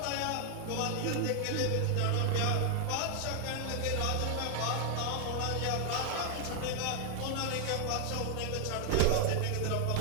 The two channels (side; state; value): both; different; correlation 0.00